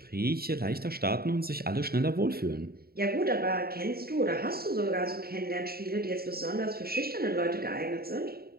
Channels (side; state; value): left; late; 0.45 ms